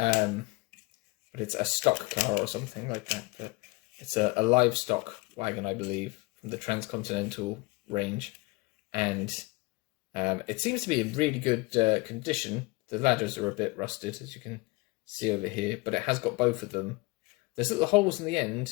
it's a stock car or something like that. But it's a livestock wagon, I believe, from the Transcontinental range, and it seems to be in really good condition. The ladders are a bit rusted, as you can see over here, but it has got both of them. There's little holes in the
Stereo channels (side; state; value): right; quieter; 24.8 dB